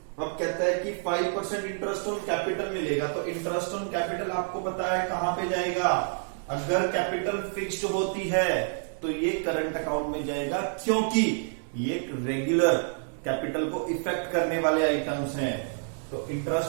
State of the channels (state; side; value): silent; left; digital silence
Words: अब कहता है कि 5% इंटरेस्ट ऑन कैपिटल मिलेगा। तो इंटरेस्ट ऑन कैपिटल आपको पता है कहां पे जाएगा, अगर कैपिटल फिक्स्ड होती है तो ये करंट अकाउंट में जाएगा, क्योंकि ये रेगुलर कैपिटल को इफेक्ट करने वाले आइटम्स हैं। तो